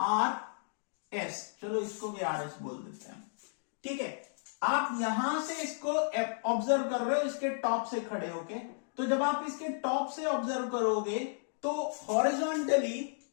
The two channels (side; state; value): right; silent; digital silence